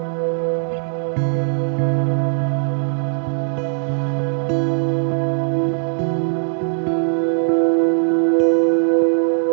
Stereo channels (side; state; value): left; silent; digital silence